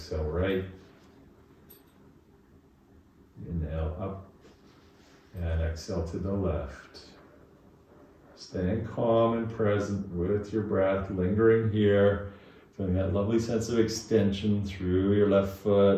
right, inhale up, and exhale to the left. Staying calm and present with your breath, lingering here, feeling that lovely sense of extension through your left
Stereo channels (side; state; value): both; identical; correlation 1.00